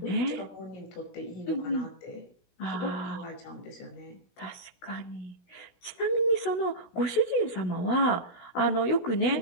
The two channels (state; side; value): late; right; 17 ms